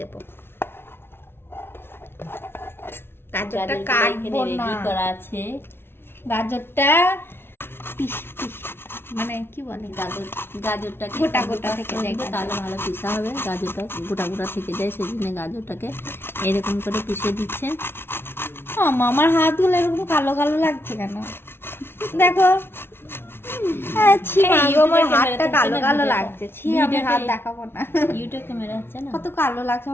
গাজরটা কাটবো না, রেডি করা আছে। গাজরটা মানে কি বলে, গাজরটাকে গোটা গোটা থেকে যায়, তাহলে ভালো পিসা হবে। গাজরটা গোটা গোটা থেকে যায়, সেই জন্য গাজরটাকে এরকম করে পিষে দিচ্ছে। আমার হাতগুলো এরকম কালো কালো লাগছে কেন দেখো। আমার হাতটা কালো কালো লাগছে, ছি আমি হাত দেখাবো না, ইউটিউব ক্যামেরা হচ্ছে না, কত কালো লাগছে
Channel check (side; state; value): right; late; 0.11 ms